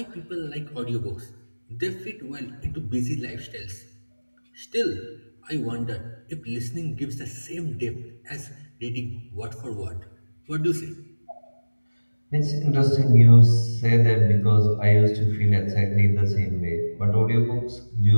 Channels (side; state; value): both; inverted; correlation -1.00